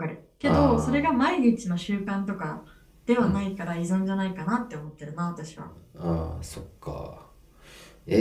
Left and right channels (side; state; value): both; identical; correlation 1.00